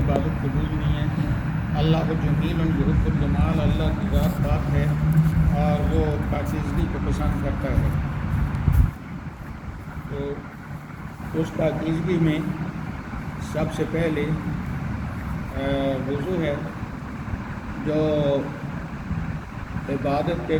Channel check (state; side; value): identical; both; correlation 1.00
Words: عبادت قبول نہیں ہے۔ اللہ جمیل یحب الجمال، اللہ کی ذات پاک ہے اور وہ پاکیزگی کو پسند کرتا ہے۔ تو اس پاکیزگی میں سب سے پہلے وضو ہے، جو عبادت کے